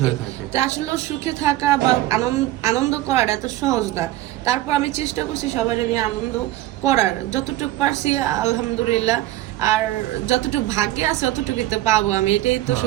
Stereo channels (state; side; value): quieter; left; 15.7 dB